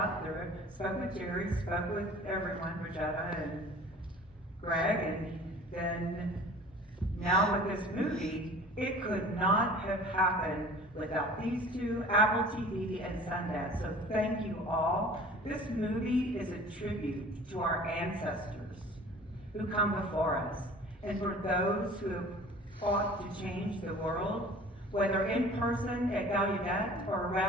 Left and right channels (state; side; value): normal; both; correlation 0.45